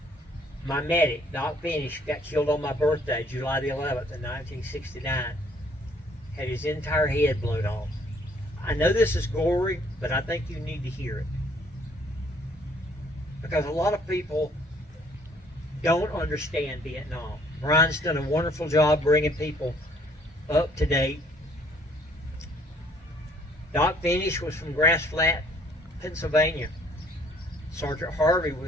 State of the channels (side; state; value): both; normal; correlation 0.61